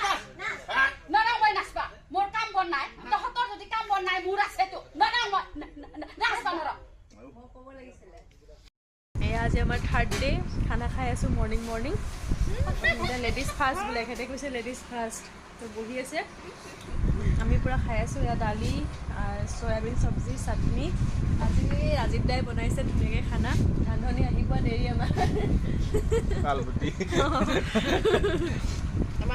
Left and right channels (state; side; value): identical; both; correlation 1.00